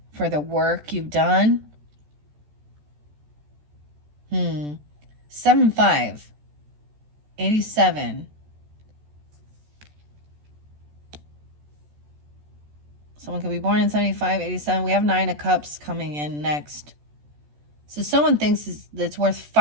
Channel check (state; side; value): late; left; 14 ms